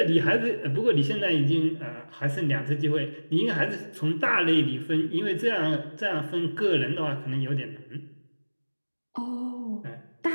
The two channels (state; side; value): inverted; both; correlation -1.00